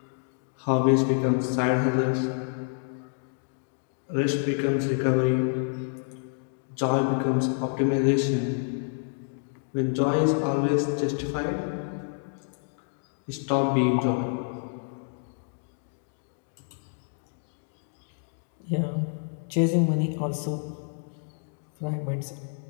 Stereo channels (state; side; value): silent; right; digital silence